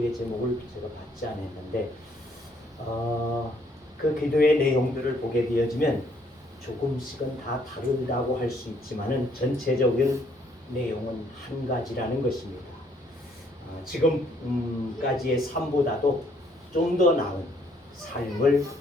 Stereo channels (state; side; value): normal; both; correlation 0.66